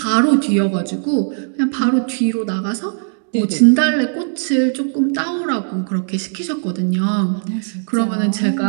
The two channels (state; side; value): silent; left; digital silence